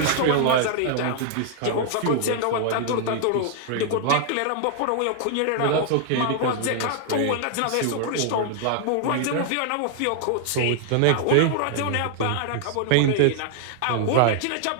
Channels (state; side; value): different; both; correlation 0.00